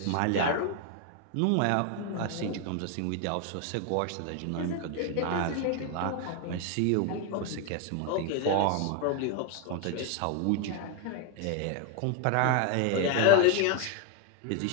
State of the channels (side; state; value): both; different; correlation 0.01